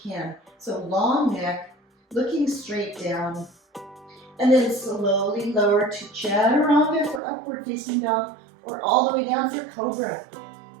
can. So long neck, looking straight down. And then slowly lower to chaturanga for upward facing dog, or all the way down for cobra.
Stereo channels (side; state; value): left; drops out; at 7.2 s